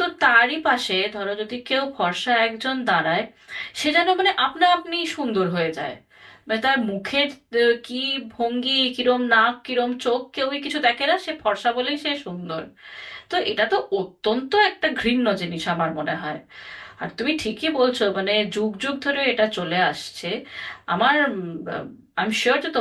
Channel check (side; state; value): both; identical; correlation 1.00